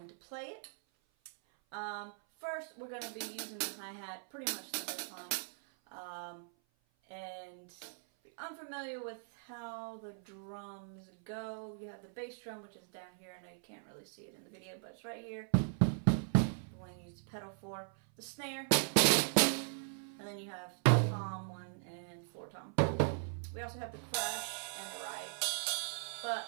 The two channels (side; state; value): left; silent; 52 dB below the other